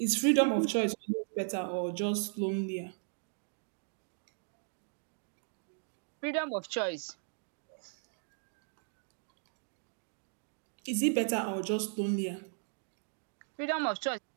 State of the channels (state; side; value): silent; left; 53 dB below the other